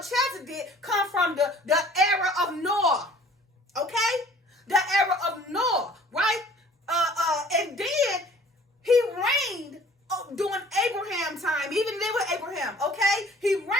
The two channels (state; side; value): normal; both; correlation 0.51